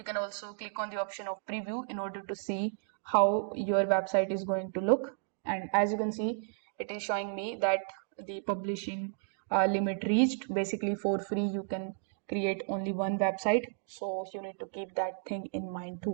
can also click on the option of preview in order to see how your website is going to look. And as you can see, it is showing me that the publishing limit reached. Basically, for free, you can create only one website. So you need to keep that thing in mind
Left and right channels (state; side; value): silent; left; digital silence